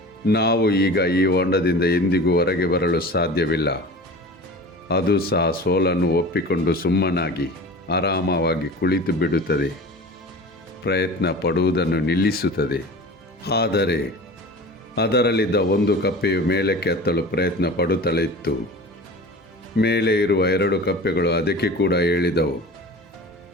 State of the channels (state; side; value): normal; both; correlation 0.36